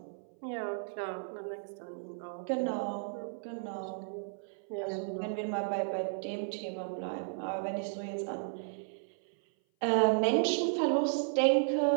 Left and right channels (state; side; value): silent; left; 55 dB below the other